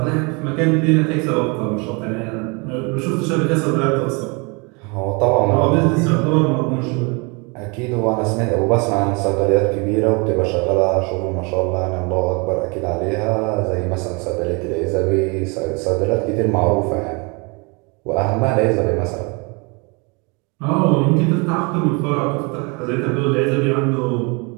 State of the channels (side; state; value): left; quieter; 30.5 dB